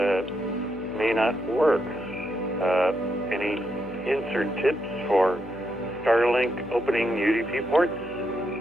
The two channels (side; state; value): left; noise; hum, 17 dB below the sound